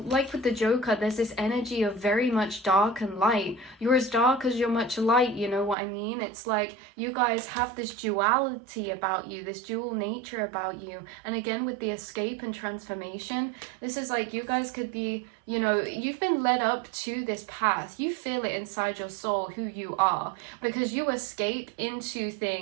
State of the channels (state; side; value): drops out; left; at 5.8 s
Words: the Joker, there's this energy of very much dark and light. You're as dark as you're much light, you know what I mean? It's like you guys have this duality about you, this dual nature about you. And again, with the escape and transformation, this is like you guys could be, you know, you've been led up to this path. You feel it inside your soul who you are, because you escape into